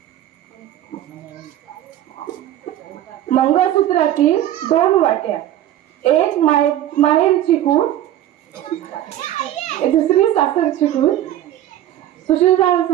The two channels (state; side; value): quieter; left; 12.5 dB